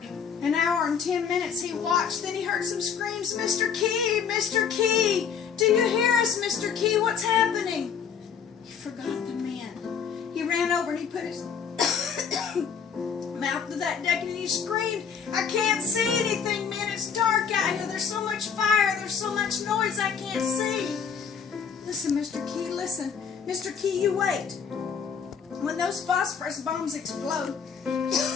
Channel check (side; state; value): right; quieter; 6.8 dB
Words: hour and 10 minutes he watched. Then he heard some screams, Mr. Key, Mr. Key, do you hear us, Mr. Key? What's happening? He forgot the men. He ran over and he put his mouth to that deck and he screamed, I can't see anything, man. It's dark out here. There's so much fire. There's so much noise I can't see. Listen, Mr. Key, listen. Mr. Key, you wait. When those phosphorus bombs explode,